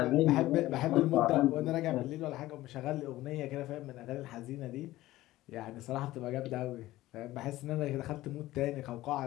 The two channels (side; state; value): right; quieter; 16.4 dB